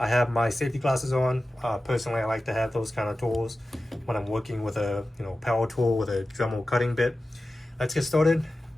have my safety glasses on. Personally, I like to have those kind of tools when I'm working with a power tool with a Dremel cutting bit. Let's get started.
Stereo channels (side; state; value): both; normal; correlation 0.94